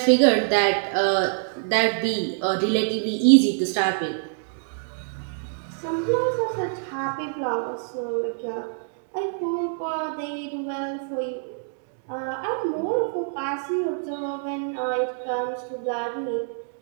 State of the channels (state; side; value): silent; left; digital silence